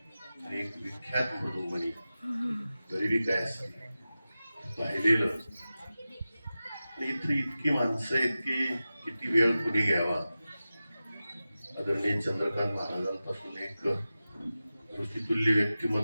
एक विख्यात मृदुमणी, गरिबी काय असते पाहिलेलं. इथं इतकी माणसं आहेत की किती वेळ कुणी घ्यावा. आदरणीय चंद्रकांत महाराजांपासून एक ऋषितुल्य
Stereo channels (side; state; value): both; inverted; correlation -0.95